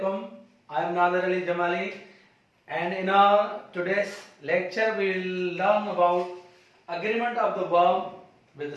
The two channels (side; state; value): both; identical; correlation 1.00